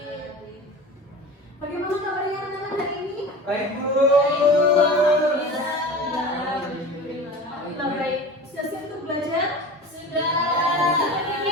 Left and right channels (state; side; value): normal; both; correlation 0.35